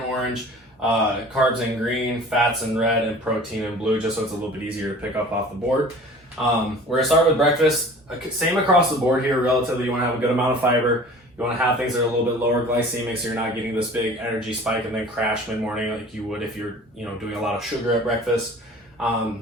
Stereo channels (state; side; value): normal; both; correlation 0.44